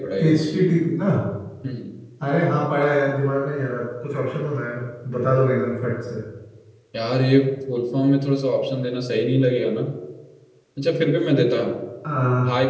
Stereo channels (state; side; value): identical; both; correlation 1.00